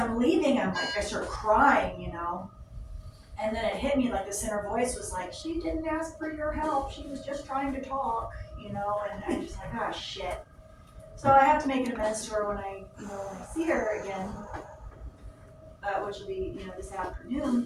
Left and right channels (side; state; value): both; identical; correlation 1.00